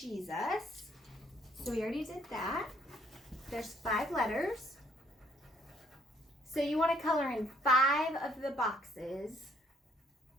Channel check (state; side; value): normal; both; correlation 0.66